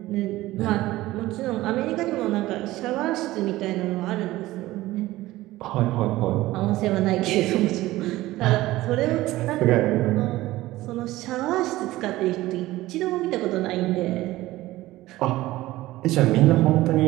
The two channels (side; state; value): left; quieter; 17.1 dB